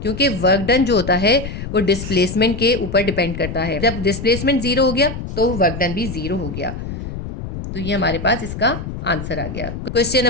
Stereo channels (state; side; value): noise; left; rumble, 7 dB below the sound